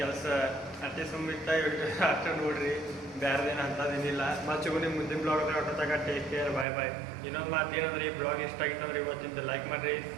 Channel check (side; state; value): left; drops out; at 6.7 s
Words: ಕೆಲಸ ಅಷ್ಟೇ ಸುಮ್ಮಿತ್ತ ಅಷ್ಟೇ ನೋಡ್ರಿ, ಬೇರೆದೇನು ಅಂಥದ್ದೇನಿಲ್ಲ. ಮತ್ತೆ ನಿಮ್ಮ ಮುಂದಿನ ಬ್ಲಾಗ್ ಹೊಟ್ಟತಾಗ ಟೇಕ್ ಕೇರ್, ಬಾಯ್. ಇನ್ನೊಂದು ಮಾತು ಏನಂದ್ರೆ ಈ ಬ್ಲಾಗ್ ಇಷ್ಟ ಆಗಿತ್ತಂದ್ರೆ ಇವತ್ತಿಂದ ಲೈಕ್ ಮಾಡಿರಿ,